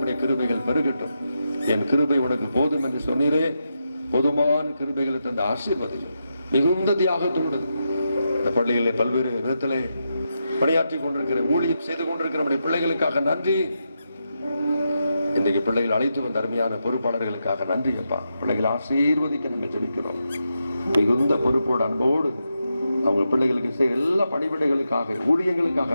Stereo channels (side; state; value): both; inverted; correlation -0.85